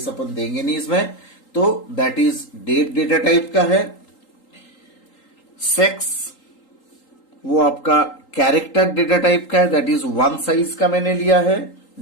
अपन देंगे नहीं इसमें, तो that is date data type का है। सेक्स वो आपका कैरेक्टर डेटा टाइप का है, दैट इज 1 साइज का मैंने लिया है।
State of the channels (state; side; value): late; right; 3.8 ms